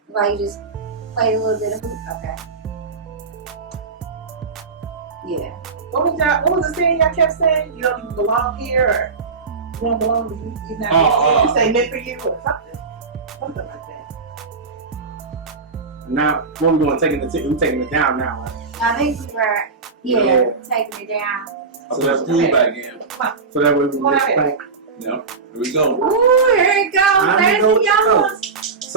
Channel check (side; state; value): left; quieter; 4.6 dB